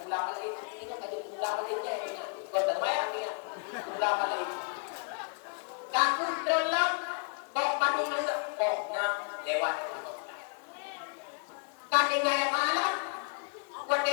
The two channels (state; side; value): quieter; right; 38.7 dB